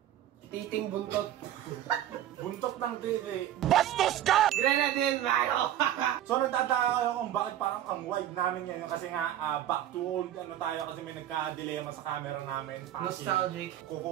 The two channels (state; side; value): quieter; left; 11.9 dB